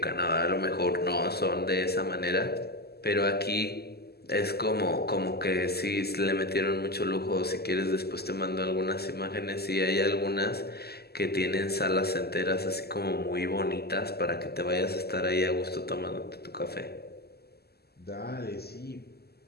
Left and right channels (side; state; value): right; late; 0.46 ms